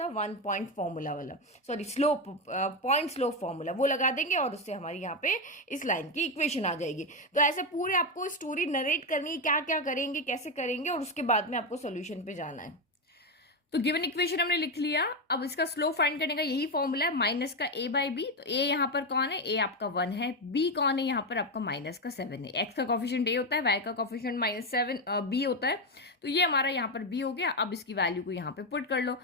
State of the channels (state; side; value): normal; both; correlation 0.10